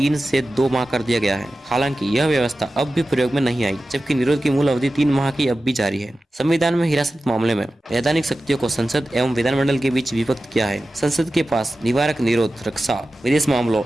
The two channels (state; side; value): normal; both; correlation 0.94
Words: से 2 माह कर दिया गया है। हालांकि यह व्यवस्था अब भी प्रयोग में नहीं आई, जबकि निरोध की मूल अवधि 3 माह की अब भी जारी है। संविधान में हिरासत मामले में वैधानिक शक्तियों को संसद एवं विधानमंडल के बीच विभक्त किया है। संसद के पास निवारक निरोध, रक्षा, विदेश मामलों